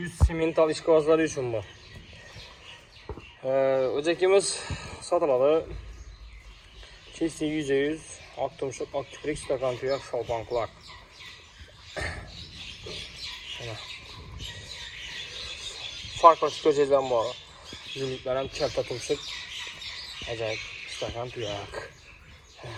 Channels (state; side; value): identical; both; correlation 1.00